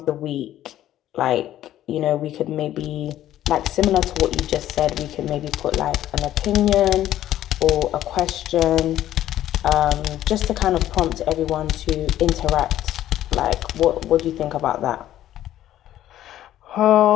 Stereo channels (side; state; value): right; quieter; 12.7 dB